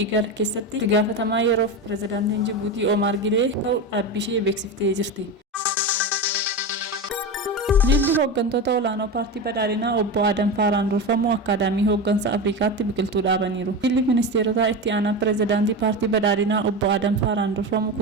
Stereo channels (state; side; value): normal; both; correlation 0.21